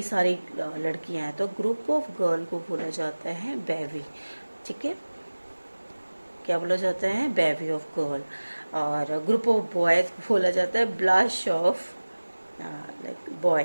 सारी लड़कियां हैं, तो ग्रुप ऑफ गर्ल को बोला जाता है बेवी, ठीक है। क्या बोला जाता है? बेवी ऑफ गर्ल। और ग्रुप ऑफ बॉयज बोला जाता है blush of like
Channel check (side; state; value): both; inverted; correlation -1.00